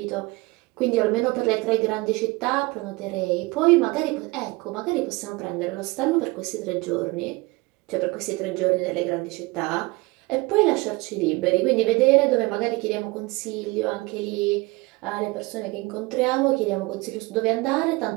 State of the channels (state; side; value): quieter; left; 23.7 dB